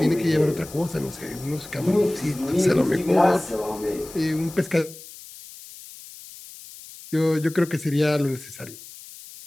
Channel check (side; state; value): left; noise; hiss, 17 dB below the sound